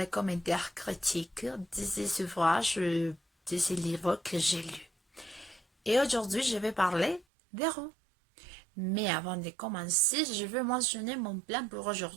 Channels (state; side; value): drops out; left; at 7.2 s